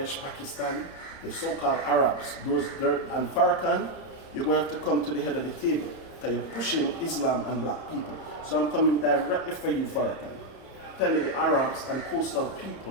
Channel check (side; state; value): right; late; 30 ms